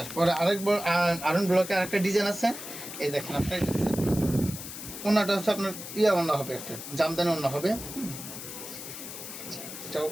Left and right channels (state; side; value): noise; left; hiss, 10 dB below the sound